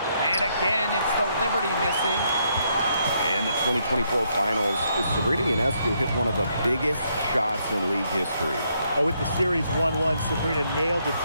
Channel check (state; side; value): inverted; both; correlation -0.75